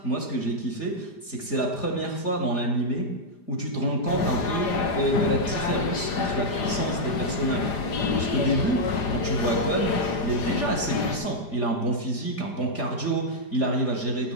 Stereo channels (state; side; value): late; right; 4.9 ms